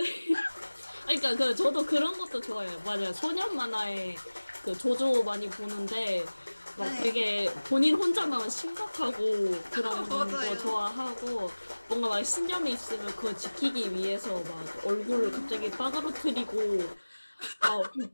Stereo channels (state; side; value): inverted; both; correlation -1.00